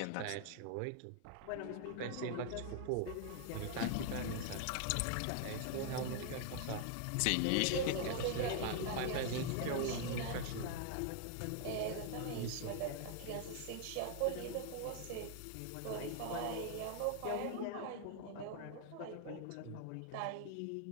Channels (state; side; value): different; both; correlation 0.00